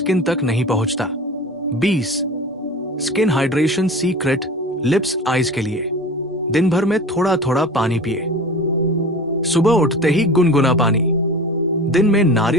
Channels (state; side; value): normal; both; correlation 0.36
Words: तक नहीं पहुंचता। 20 skin hydration secret lips eyes के लिए। दिन भर में थोड़ा थोड़ा पानी पिए। सुबह उठते ही गुनगुना पानी, दिन में